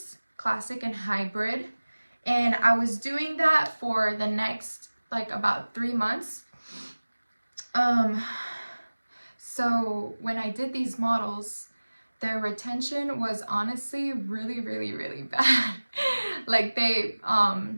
classic and hybrid, and I was doing that for the next like about 3 months. So when I did these models, their retention was honestly really bad. Like they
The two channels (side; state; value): both; inverted; correlation -1.00